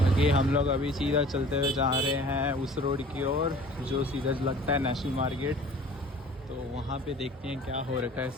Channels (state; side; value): normal; both; correlation 0.47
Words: हम लोग अभी सीधा चलते हुए जा रहे हैं उस रोड की ओर जो सीधा लगता है नेशनल मार्केट. तो वहाँ पे देखते हैं क्या हो रखा है